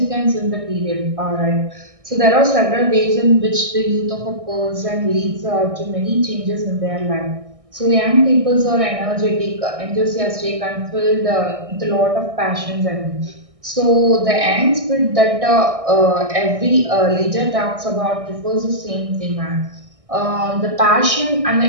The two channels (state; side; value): late; left; 1.6 ms